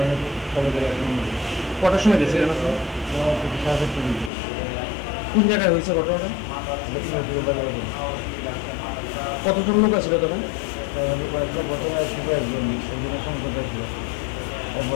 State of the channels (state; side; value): drops out; right; at 4.3 s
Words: কটার সময় গেছিলেন আপনি? কোন জায়গায় হয়েছে ঘটনাটা? কতজন লোক আছিল তখন? প্রথমে ছিল একজন, সেজন্য সংকটে ছিল।